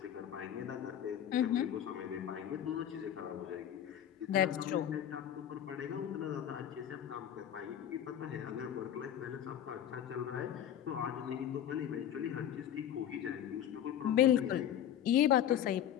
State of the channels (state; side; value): quieter; right; 10.4 dB